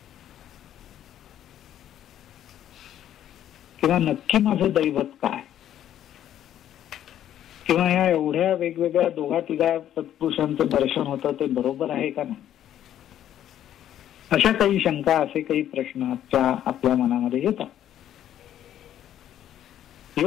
किंवा नक्की माझं दैवत काय? किंवा या एवढ्या वेगवेगळ्या दोघा तिघा सत्पुरुषांचं दर्शन होतं ते बरोबर आहे का नाही? अशा काही शंका, असे काही प्रश्न आपल्या मनामध्ये येतात.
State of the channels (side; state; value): right; quieter; 11.2 dB